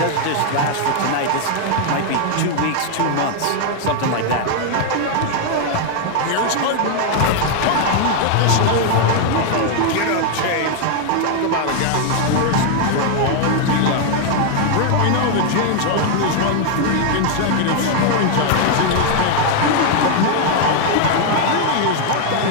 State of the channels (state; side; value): different; both; correlation 0.00